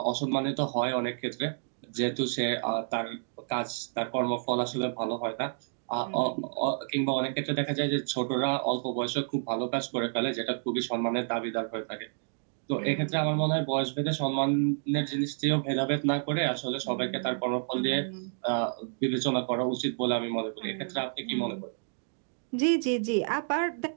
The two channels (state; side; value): silent; left; digital silence